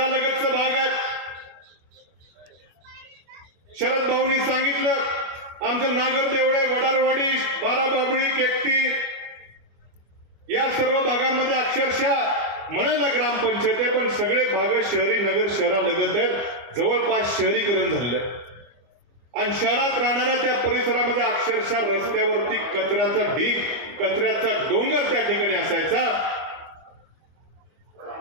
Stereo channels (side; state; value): left; late; 25 ms